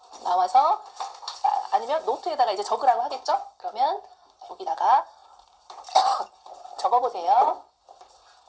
나와서 아니면 노트에다가 이제 적으라고 하겠죠? 그러면 여기다가 적어보세요.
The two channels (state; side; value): identical; both; correlation 1.00